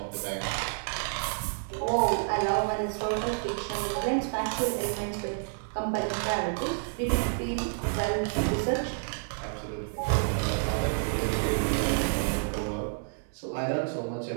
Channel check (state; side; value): silent; left; digital silence